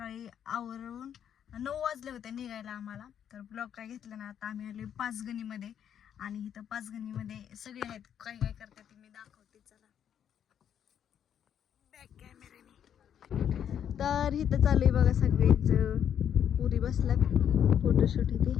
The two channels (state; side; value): quieter; right; 9.1 dB